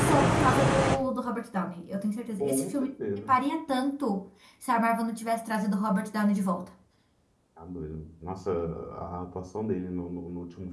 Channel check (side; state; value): both; identical; correlation 1.00